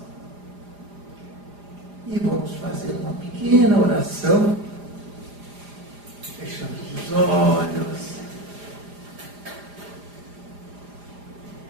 E vamos fazer uma pequena oração, fechando os olhos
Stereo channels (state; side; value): late; left; 4.9 ms